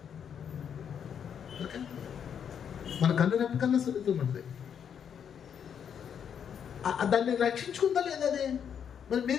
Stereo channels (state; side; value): quieter; right; 8.0 dB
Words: మన కన్ను రెప్ప కన్నా సున్నితంగా ఉంటుంది. దాన్ని రక్షించుకుందా లేదా? అది మరి